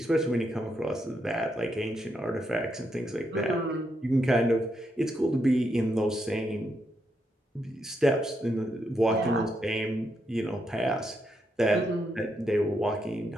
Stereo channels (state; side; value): normal; both; correlation 0.80